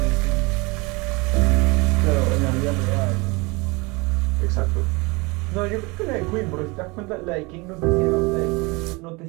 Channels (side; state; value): left; quieter; 26.3 dB